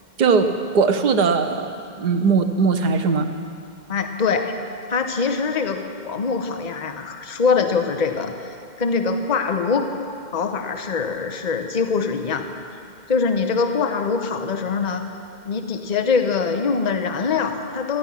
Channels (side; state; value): left; late; 2.1 ms